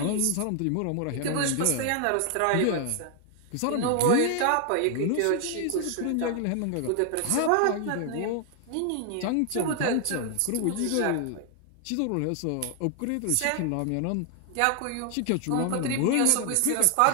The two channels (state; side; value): different; both; correlation 0.00